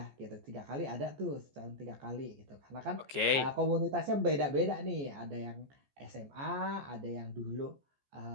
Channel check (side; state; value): left; late; 14 ms